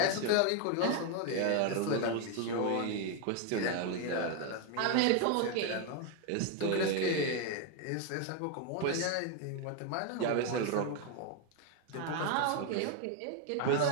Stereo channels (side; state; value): both; different; correlation 0.01